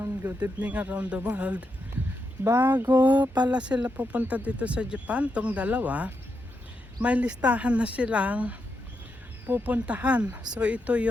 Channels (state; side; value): normal; both; correlation 0.84